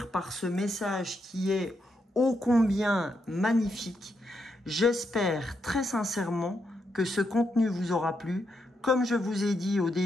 par ce message qui est ô combien magnifique. J'espère très sincèrement que ce contenu vous aura plu. Comme je vous ai dit au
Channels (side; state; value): both; normal; correlation 0.81